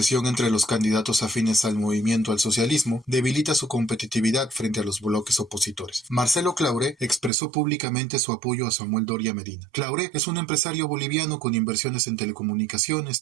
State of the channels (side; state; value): left; drops out; at 7.3 s